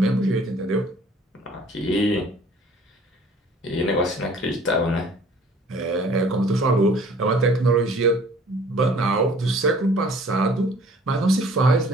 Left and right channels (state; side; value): normal; both; correlation 0.53